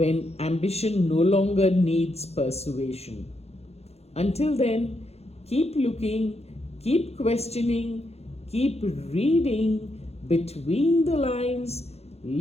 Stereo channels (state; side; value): late; right; 0.30 ms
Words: ambition no longer needs persuasion. Until then, keep looking, keep questioning, keep reading Between the Lines,